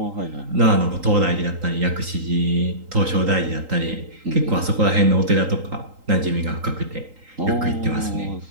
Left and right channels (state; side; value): late; left; 3.8 ms